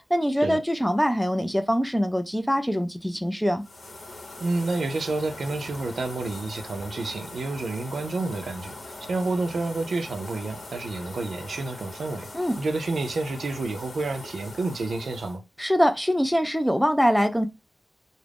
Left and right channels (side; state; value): both; normal; correlation 0.96